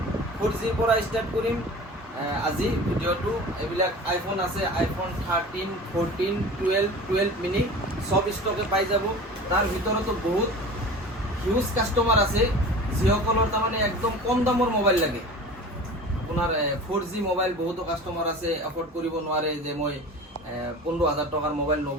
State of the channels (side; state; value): both; normal; correlation 0.37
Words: 4G পৰা ষ্টাৰ্ট কৰিম আজি ভিডিঅ'টো। এইবিলাক আইফোন আছে, আইফোন 13, 14, 12 মিনি সব ষ্টকে পাই যাব। তাৰ ভিতৰতো বহুত হিউজ কাষ্টমাৰ আছে যিসকলৰ তাৰমানে একদম কম দামৰ মোবাইল লাগে। আপোনাৰ 4G মোবাইল বহুতো কাষ্টমাৰ আছে এফৰ্ড কৰিব নোৱাৰে, যে মই 15000 টকাৰ মোবাইল